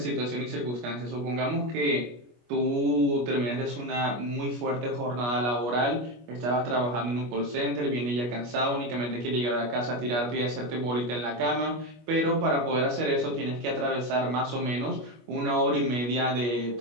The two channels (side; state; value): left; late; 25 ms